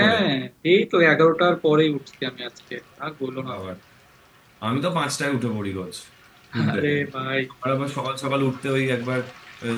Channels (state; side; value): identical; both; correlation 1.00